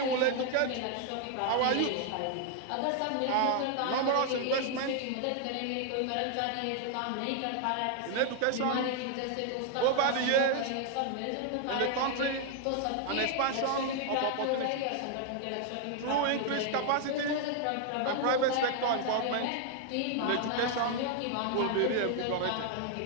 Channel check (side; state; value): both; different; correlation 0.00